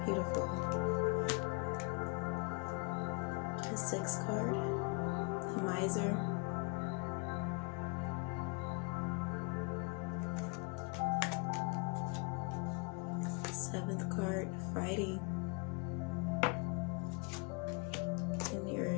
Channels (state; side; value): quieter; right; 32.3 dB